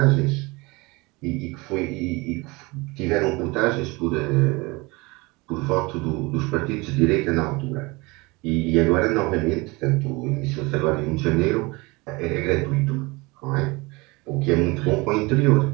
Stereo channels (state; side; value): quieter; left; 24.8 dB